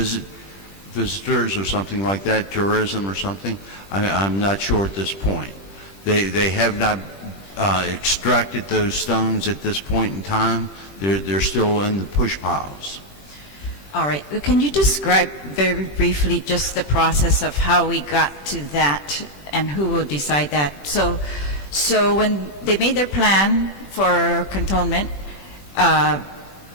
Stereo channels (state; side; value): late; right; 21 ms